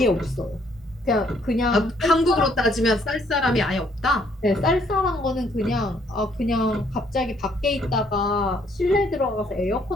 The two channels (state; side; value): normal; both; correlation 0.67